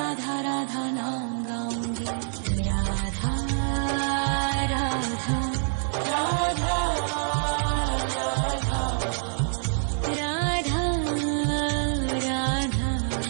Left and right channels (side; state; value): left; silent; digital silence